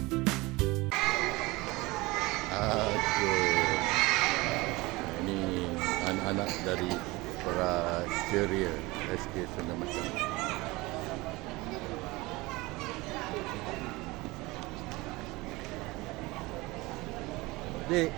Ini anak-anak dari Praceria SK Sungai Macang. Dek.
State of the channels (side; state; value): left; quieter; 22.1 dB